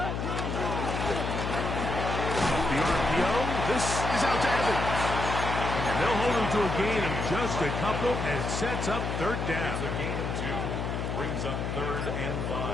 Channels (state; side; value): noise; left; hum, 2 dB below the sound